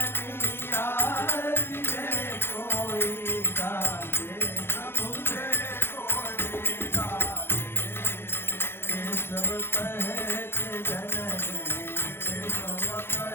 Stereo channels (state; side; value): late; right; 0.11 ms